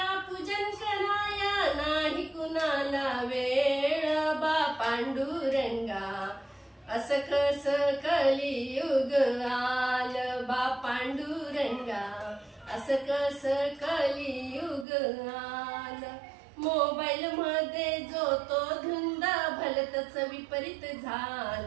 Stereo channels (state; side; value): drops out; left; at 14.9 s